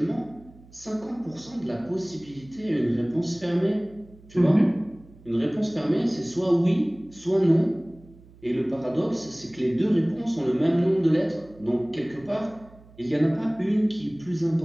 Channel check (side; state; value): right; noise; hum, 24 dB below the sound